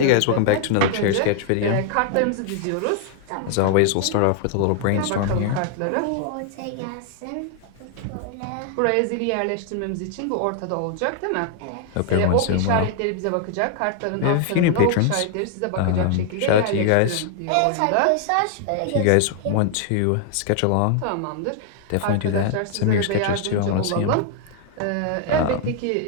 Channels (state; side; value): different; both; correlation 0.00